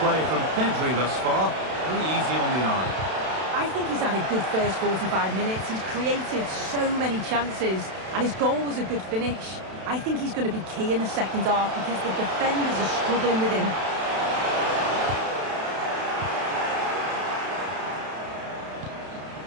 from Pedri thus far. Very easy on the eye. I think he's had a good first 45 minutes. He's created so many chances, and his goal was a good finish. I think he's going to be key in the second half because the defenders are struggling with him.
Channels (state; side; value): late; left; 32 ms